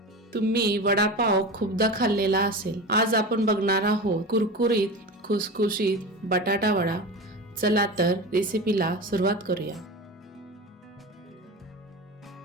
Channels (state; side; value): normal; both; correlation 0.28